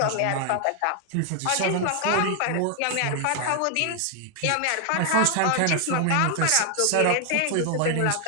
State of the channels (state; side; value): different; both; correlation 0.00